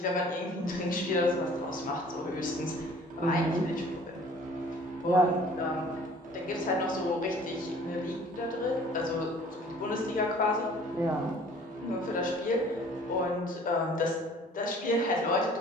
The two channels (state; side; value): normal; both; correlation 0.51